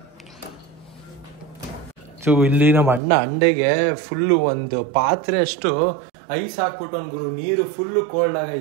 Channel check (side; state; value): left; drops out; at 3.0 s